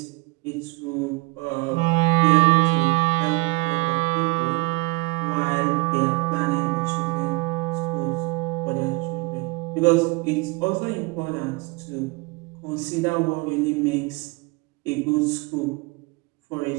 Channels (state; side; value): quieter; left; 26.4 dB